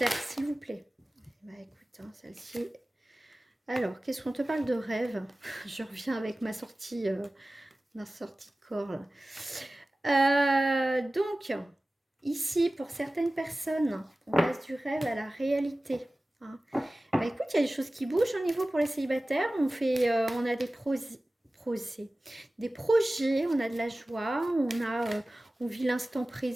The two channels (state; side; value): normal; both; correlation 0.97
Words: s'il vous plaît. Bah écoute, hein, celle-ci... Alors, qu'est-ce qu'on te parle de rêve? Je reviens avec ma sortie de corps. Donc, ici, pour certaines personnes, on passe du rêve à la réalité. Hein. Bah, écoute, il y a des choses qui bougent au niveau pour les célibataires. On a des des projets, on a de la joie, on vit l'instant